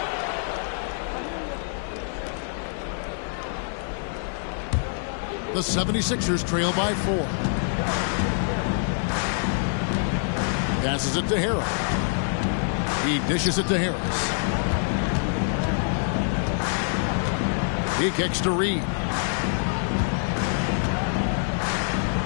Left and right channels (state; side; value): silent; right; 57 dB below the other